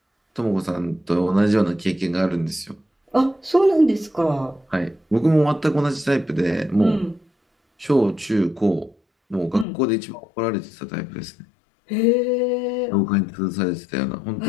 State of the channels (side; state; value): right; drops out; at 9.7 s